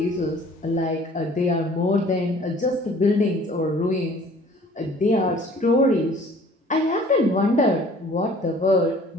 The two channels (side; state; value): both; normal; correlation 0.52